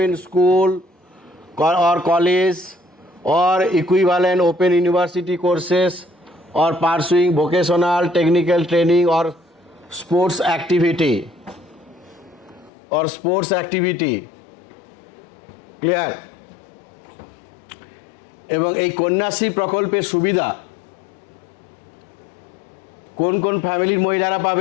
school or college or equivalent open university courses or pursuing vocational technical training or sports activity, clear. এবং এই কন্যাশ্রী প্রকল্পের সুবিধা কোন কোন ফ্যামিলির মহিলারা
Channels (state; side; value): drops out; right; at 12.7 s